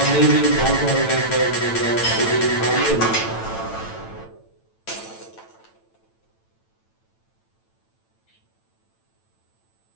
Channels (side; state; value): right; late; 9.0 ms